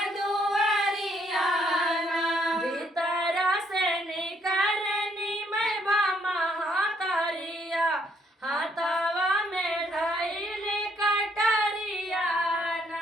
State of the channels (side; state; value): both; normal; correlation 0.69